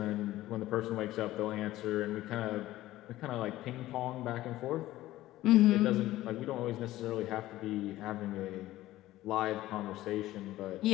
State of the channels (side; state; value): right; quieter; 15.7 dB